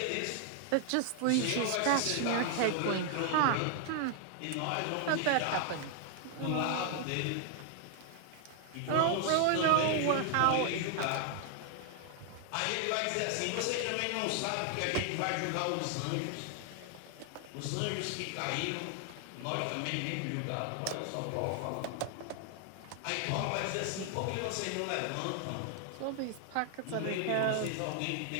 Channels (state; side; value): different; both; correlation 0.00